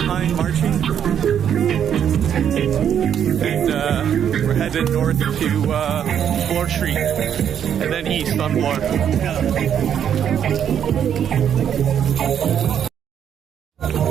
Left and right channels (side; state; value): left; quieter; 8.9 dB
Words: marching, and we're headed north to Bloor Street, and then east on Bloor.